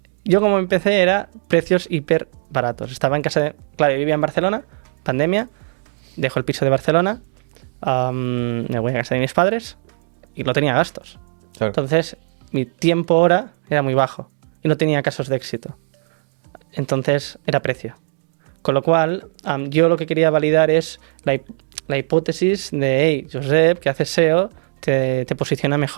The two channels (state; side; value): silent; left; 66 dB below the other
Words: Yo como empecé era precios hiper baratos. Estaba en casa de... Claro, yo vivía en Barcelona, pandemia, dejo el piso de Barcelona, me voy a casa de mis padres y no tenía gastos. Claro. Entonces, mi tiempo hora era muy bajo y no tenía casos de éxito. Entonces, era precio. Con lo cual, yo lo que quería validar es la hipótesis de, hey, Josep, que haces SEO, te posiciona